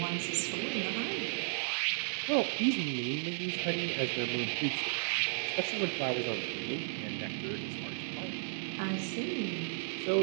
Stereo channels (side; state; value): left; silent; digital silence